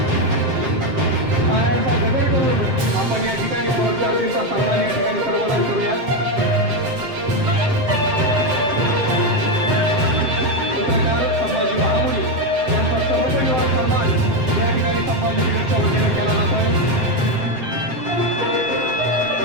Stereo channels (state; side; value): late; left; 7.8 ms